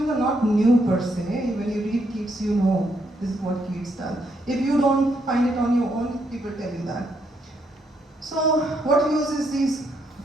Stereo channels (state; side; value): normal; both; correlation 0.76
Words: are not new per se. When you read Keats, you know this is what Keats does. If you don't find it on your own, people tell you that. So what uses these